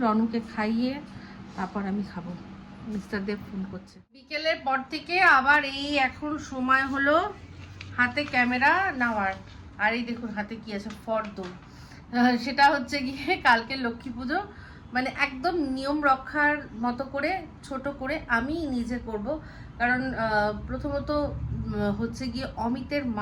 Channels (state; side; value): identical; both; correlation 1.00